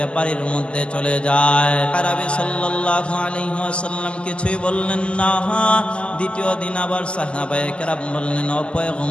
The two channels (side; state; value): right; late; 0.053 ms